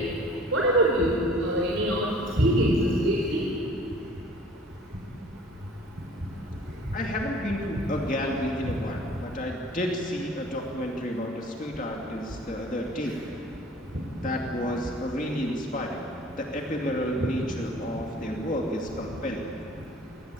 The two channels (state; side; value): normal; both; correlation 0.50